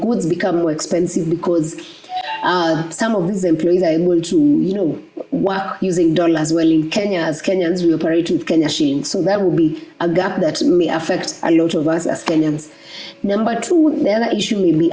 become more expensive because some of these employees are able to, work using dollars, while in Kenya, as Kenyans, we operate with Kenya shillings. So that will be a gap that may affect a lot of us as Kenyans. Number two, the other issue may be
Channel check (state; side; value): identical; both; correlation 1.00